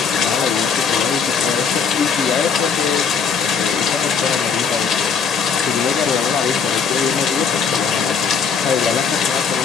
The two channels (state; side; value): quieter; right; 6.2 dB